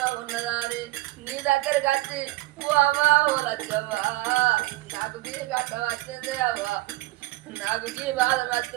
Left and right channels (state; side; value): quieter; left; 18.8 dB